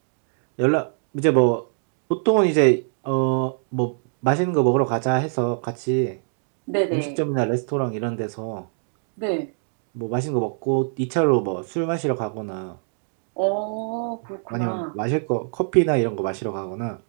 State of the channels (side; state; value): left; silent; digital silence